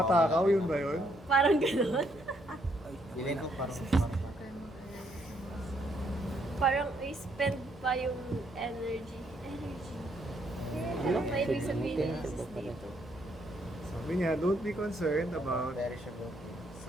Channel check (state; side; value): normal; both; correlation 0.72